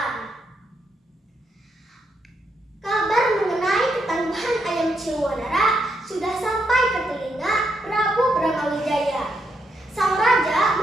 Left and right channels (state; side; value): normal; both; correlation 0.79